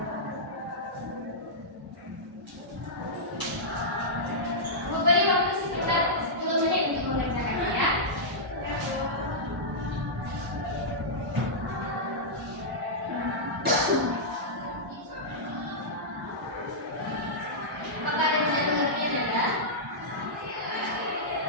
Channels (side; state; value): both; normal; correlation -0.12